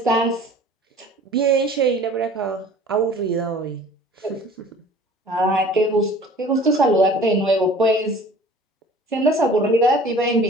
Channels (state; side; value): normal; both; correlation 0.47